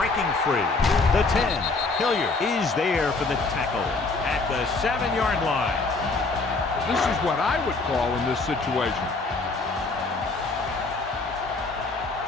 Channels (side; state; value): right; quieter; 3.7 dB